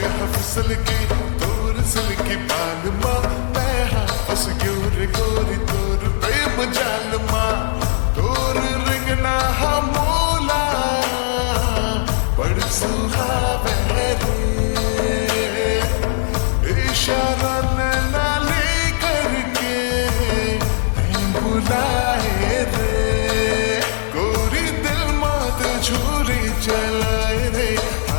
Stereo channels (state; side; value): silent; right; 65 dB below the other